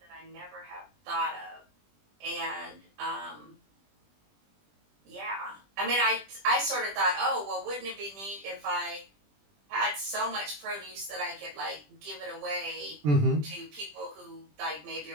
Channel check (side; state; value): left; late; 20 ms